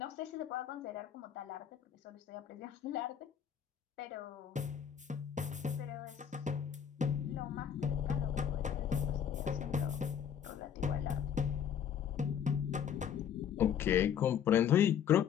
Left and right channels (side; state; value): right; quieter; 8.5 dB